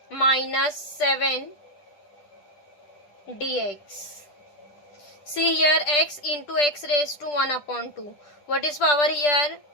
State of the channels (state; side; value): late; right; 10 ms